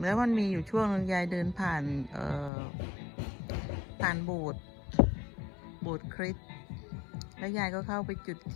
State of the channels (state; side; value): drops out; right; at 2.5 s